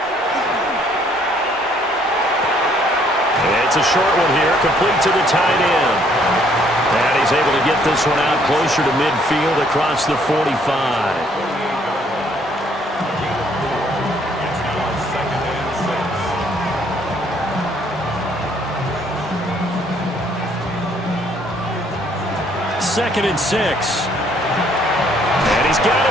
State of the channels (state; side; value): normal; both; correlation 0.65